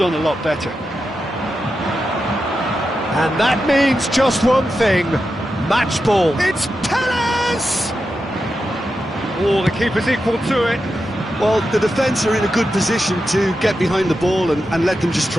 a lot better. And that means just one thing, match ball. It's Perez! Oh, the keeper's equal to it. Well, the defence are in a good position to get behind the ball and let them just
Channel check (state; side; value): normal; both; correlation 0.89